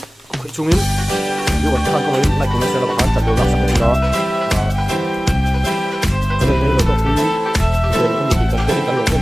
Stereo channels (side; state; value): both; normal; correlation 0.97